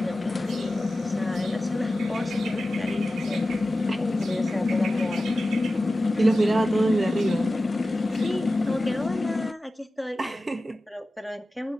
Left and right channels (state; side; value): normal; both; correlation 0.94